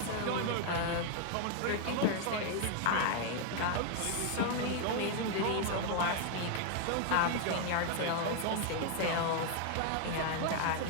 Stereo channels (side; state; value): both; different; correlation 0.00